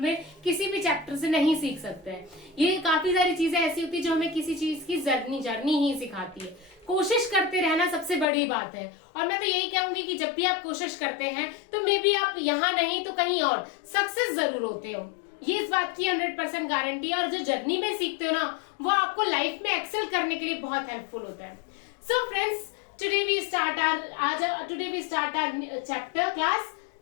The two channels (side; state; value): right; drops out; at 8.2 s